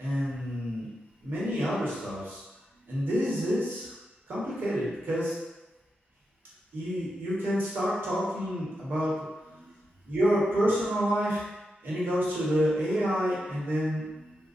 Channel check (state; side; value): normal; both; correlation 0.87